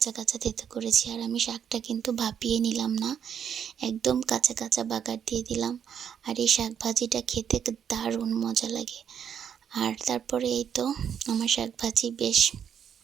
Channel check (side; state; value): left; quieter; 8.3 dB